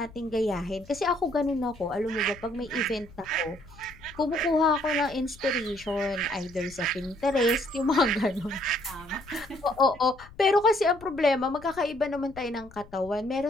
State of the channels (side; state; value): left; noise; rumble, 21 dB below the sound